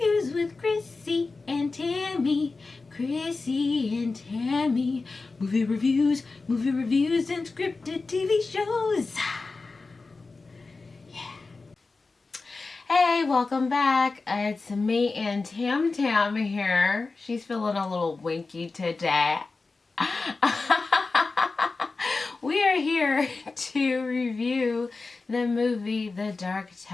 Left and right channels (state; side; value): quieter; right; 3.9 dB